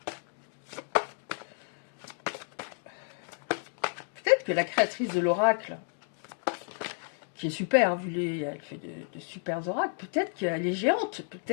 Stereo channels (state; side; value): silent; right; 57 dB below the other